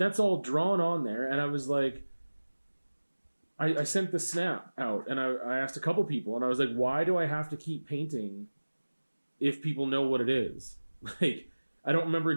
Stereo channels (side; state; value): both; inverted; correlation -1.00